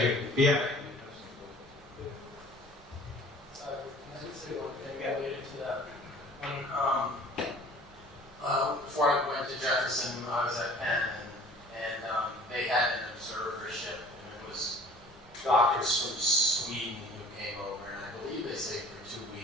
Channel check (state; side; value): normal; both; correlation 0.49